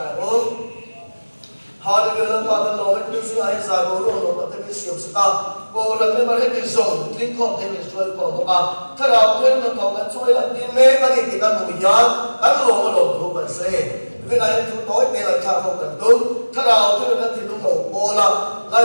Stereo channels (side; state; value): both; inverted; correlation -1.00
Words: ôn họ được lần qua lần rồi cái sự ai giải bố luôn rồi cái cái siêu sao bố lần này mà hết cái dùng linh con thêm cái chuối còn một cái thế nào thêm nó còn cái chuối là cái mê cái gì thì cái mùi nhán cái lỗ mà lỗ thu bẩn xe cái này thu tối này là thao không cần đúng thế nào thế là thì nó ngủ bố là